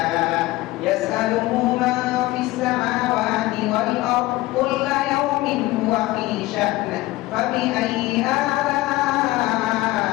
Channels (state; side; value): quieter; right; 18.5 dB